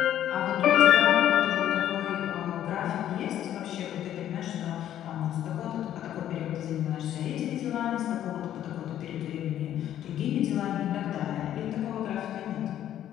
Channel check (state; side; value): quieter; right; 11.4 dB